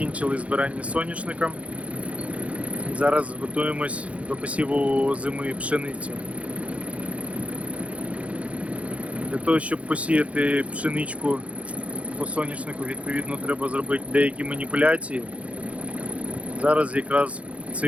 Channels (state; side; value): late; left; 0.064 ms